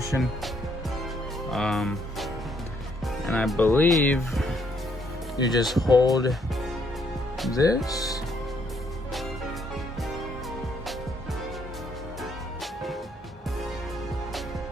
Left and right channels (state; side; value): normal; both; correlation 0.70